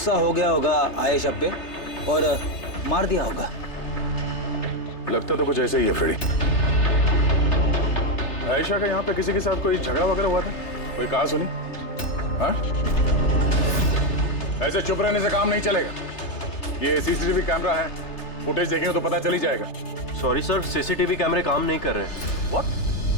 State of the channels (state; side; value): late; right; 3.3 ms